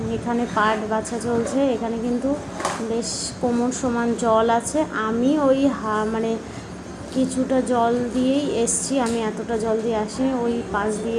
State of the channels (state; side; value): identical; both; correlation 1.00